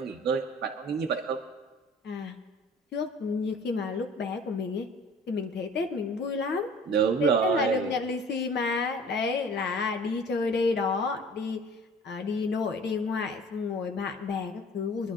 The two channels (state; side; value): normal; both; correlation 0.47